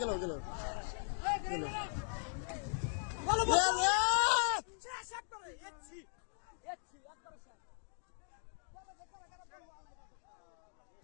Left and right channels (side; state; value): right; silent; digital silence